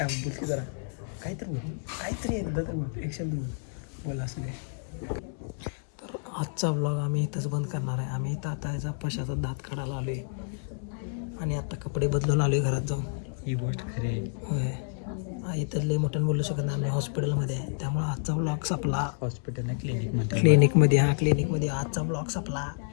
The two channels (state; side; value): silent; right; digital silence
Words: बोल की जरा काहीतरी एकदा तर बोल एक शब्द बोल असं नाही. तर आजचा ब्लॉग आम्ही इथंच बंद करणार आहे. आम्ही इथं आता याचा पशाचा दात काढायला आलो आहे आणि आता कपडे बदलून आलो आहे घरात जाऊन. ही गोष्ट खरी आहे. होय इथं लय मोठ्यानं बोलू शकत नाही हॉस्पिटलमध्ये आहे त्यामुळे आजचा ब्लॉग संपला. हॉस्पिटल क्लिनिकमध्ये क्लिनिकमध्ये आजचा ब्लॉग संपला.